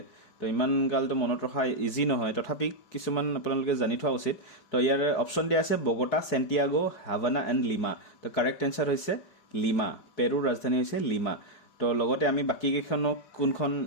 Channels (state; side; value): late; right; 4.7 ms